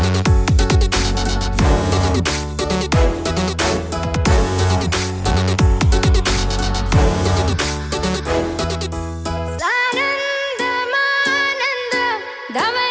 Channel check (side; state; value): both; identical; correlation 1.00